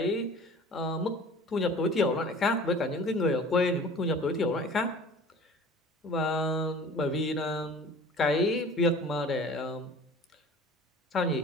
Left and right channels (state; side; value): normal; both; correlation 0.44